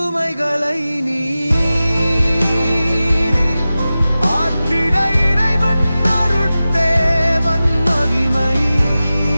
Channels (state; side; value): inverted; both; correlation -0.95